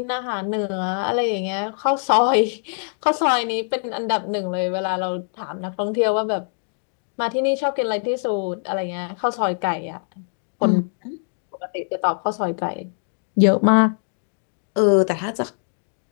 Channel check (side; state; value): right; silent; digital silence